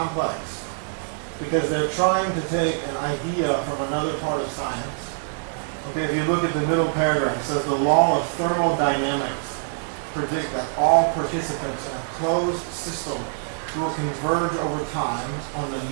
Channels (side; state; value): left; silent; digital silence